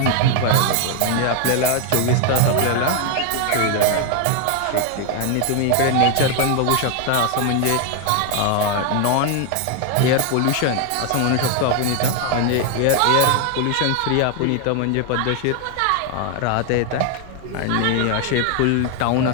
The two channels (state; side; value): different; both; correlation 0.01